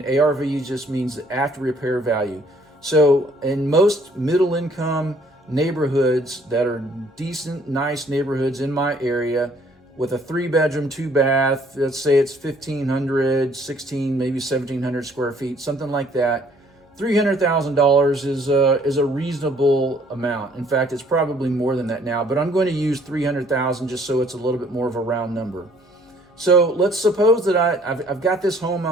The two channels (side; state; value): both; normal; correlation 0.61